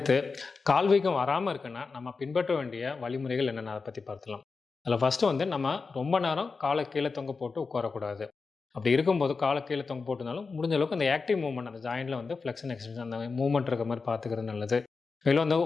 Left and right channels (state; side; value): quieter; right; 4.6 dB